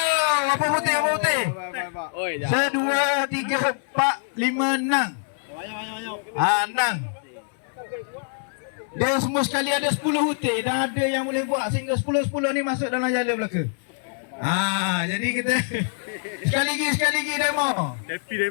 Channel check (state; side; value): silent; right; 62 dB below the other